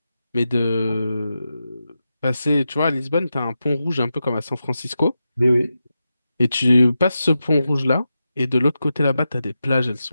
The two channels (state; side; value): inverted; both; correlation -0.90